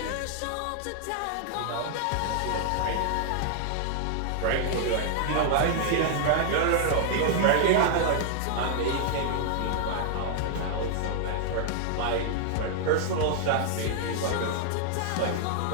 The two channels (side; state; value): both; different; correlation 0.00